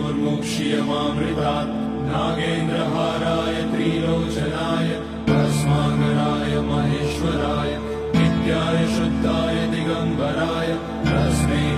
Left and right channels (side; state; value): both; identical; correlation 1.00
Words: मृत्योर्मुक्ष्यमामृतात् नागेन्द्रहाराय त्रिलोचनाय भस्माकराय महेश्वराय नित्याय शुद्धाय दिगम्बराय तस्मै